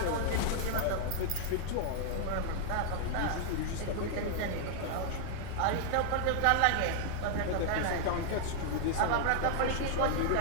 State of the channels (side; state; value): both; different; correlation 0.00